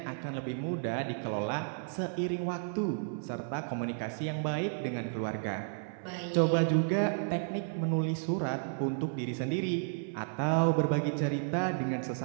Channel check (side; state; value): left; silent; 56 dB below the other